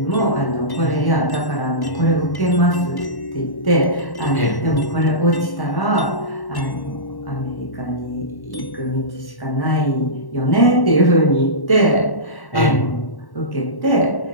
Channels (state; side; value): late; right; 1.1 ms